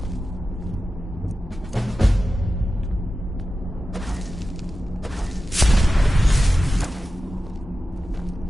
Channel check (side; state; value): both; normal; correlation 0.93